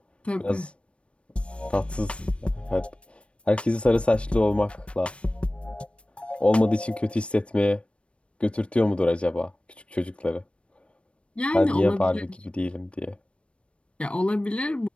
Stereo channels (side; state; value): right; late; 0.060 ms